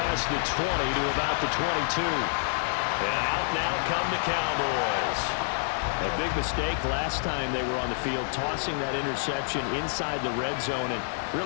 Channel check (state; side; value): silent; right; digital silence